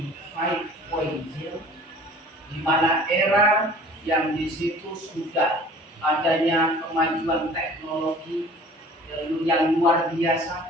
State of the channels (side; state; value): both; normal; correlation 0.47